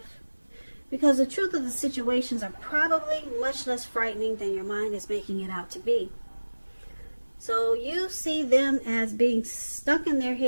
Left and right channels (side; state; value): both; inverted; correlation -1.00